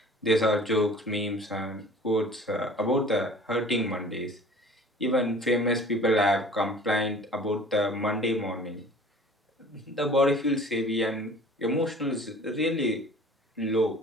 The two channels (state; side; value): normal; both; correlation 0.46